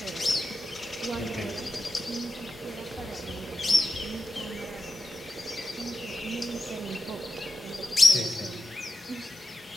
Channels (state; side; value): normal; both; correlation 0.89